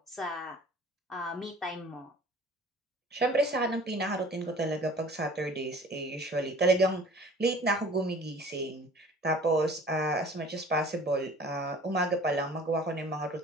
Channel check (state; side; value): normal; both; correlation 0.48